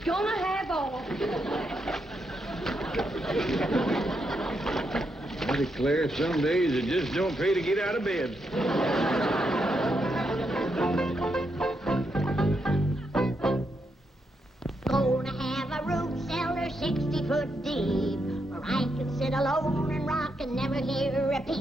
gonna have oil. I declare, some days it just don't pay to get out of bed. Gonna have a root cellar 60 foot deep, where I can sit alone and rock and never hear a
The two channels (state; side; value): normal; both; correlation 0.81